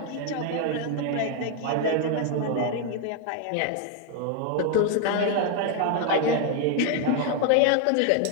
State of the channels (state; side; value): different; both; correlation 0.01